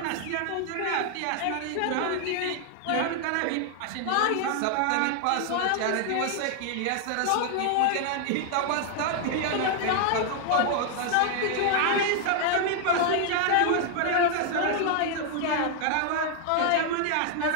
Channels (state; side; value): different; both; correlation 0.00